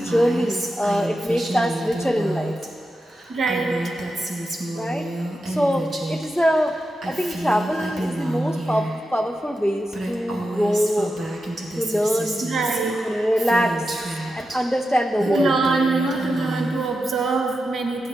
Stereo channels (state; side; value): normal; both; correlation 0.89